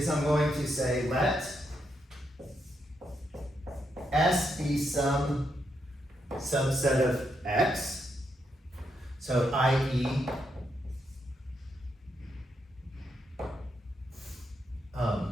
I'm going to say let S be some subset of X, so i.e.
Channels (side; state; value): both; normal; correlation 0.80